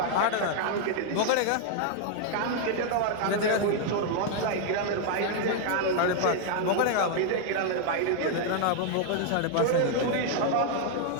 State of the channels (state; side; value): different; both; correlation 0.00